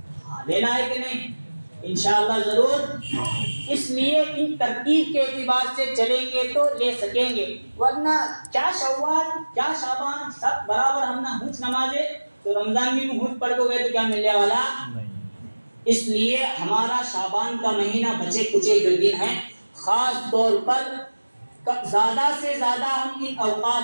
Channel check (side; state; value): both; inverted; correlation -1.00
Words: ہاں لینا ہے کہ نہیں انشاءاللہ ضرور. اس لیے ان ترتیب کے اعتبار سے چلیں گے تو لے سکیں گے ورنہ کیا شوال کیا شعبان سب برابر ہم نہ ہنچ نمازیں تو رمضان میں ہنچ پڑھ کو گئے تو کیا ملنے والا. اس لیے ہمارا شعبان کا مہینہ بچے کچے جو دن ہیں خاص طور پر زیادہ سے زیادہ ہم ان